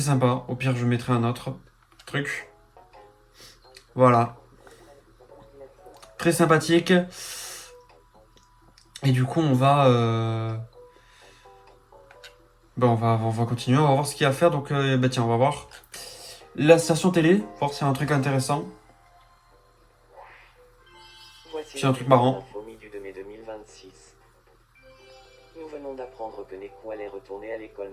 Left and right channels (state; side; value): identical; both; correlation 1.00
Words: Au pire, je mettrai un autre truc. Voilà. Très sympathique. Et du coup, on va continuer, on va voir ce qu'il y a à faire. Donc, tiens, on va voir la station télé, voir s'il y a un truc intéressant. Voici C'est un truc marrant. l'info mi du 2 mai 2026. Nous venons d'apprendre que Nekou allait retourner à l'école